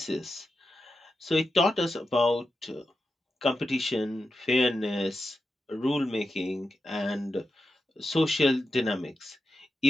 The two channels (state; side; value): normal; both; correlation 0.90